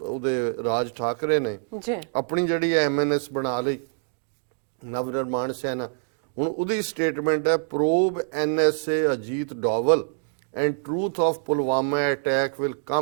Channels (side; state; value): left; silent; digital silence